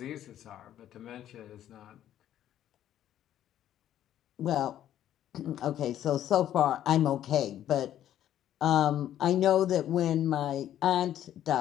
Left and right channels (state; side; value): quieter; right; 11.5 dB